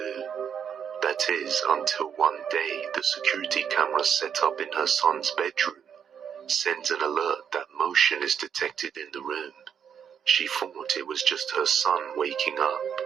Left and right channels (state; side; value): quieter; left; 7.9 dB